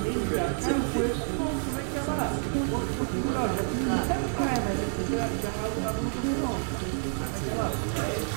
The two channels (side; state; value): left; silent; 59 dB below the other